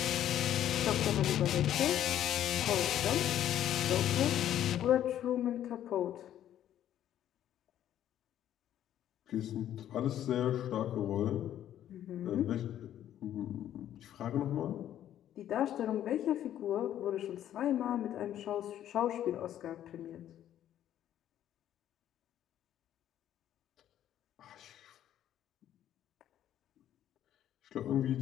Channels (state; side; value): quieter; right; 11.4 dB